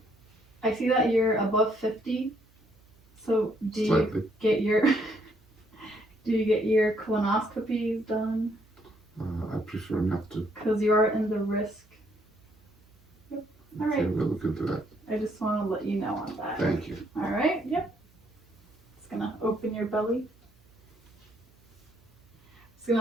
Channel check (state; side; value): noise; right; hum, 29 dB below the sound